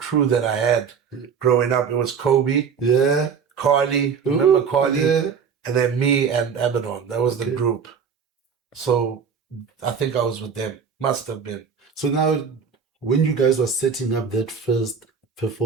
that I had growing up. It was Kobe, Yeah. Carly, remember Ooh, Carly? Yeah. And then me and Abaddon. That was the Okay. group. So I think I was with them. Must have been. So now, when you guys were setting up that first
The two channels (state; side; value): quieter; left; 6.5 dB